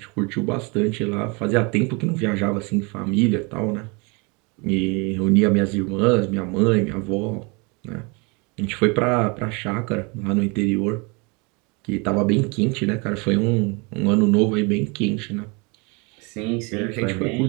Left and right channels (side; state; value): left; quieter; 29.8 dB